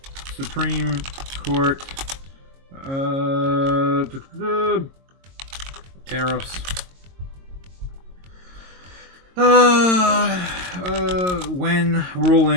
Supreme Court tariffs. When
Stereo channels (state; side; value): late; left; 22 ms